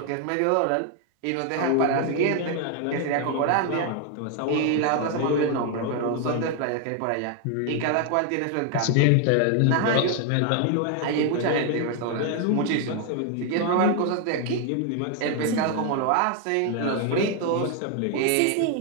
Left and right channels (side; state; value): both; different; correlation 0.00